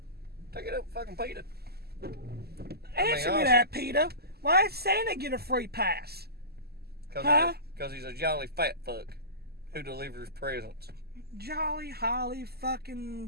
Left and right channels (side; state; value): left; late; 0.46 ms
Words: Take it up, fucking PETA. Answer me honestly- that, PETA. Why does Santa get a free pass? Huh? Because he's a jolly fat fuck who delivers presents. Jolly Holly